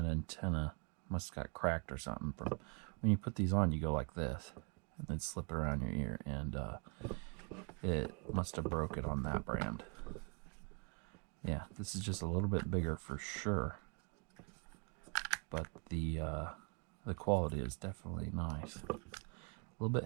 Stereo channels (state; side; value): quieter; left; 35.3 dB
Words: antenna must have got cracked or something. From when you put these on, you go like this. And then slip it around your ear. And it must have broke it on that brand. Yeah, this is just a little bit bigger for sure. But the quality is definitely nice. A little